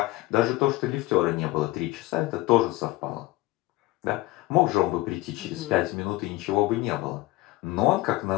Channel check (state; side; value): quieter; right; 19.4 dB